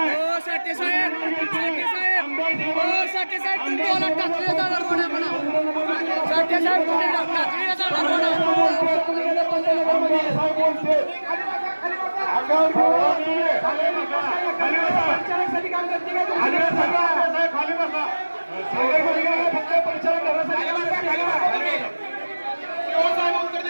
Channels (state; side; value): inverted; both; correlation -1.00